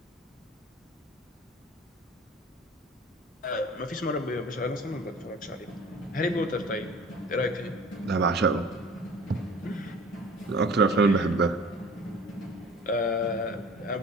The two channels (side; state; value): both; normal; correlation 0.45